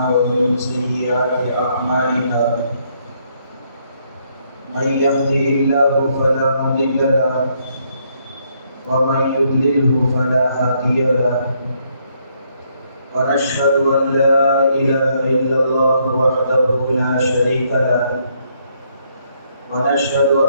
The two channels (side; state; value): both; inverted; correlation -0.72